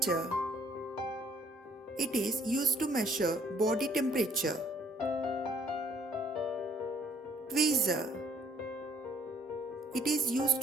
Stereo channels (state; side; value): normal; both; correlation 0.61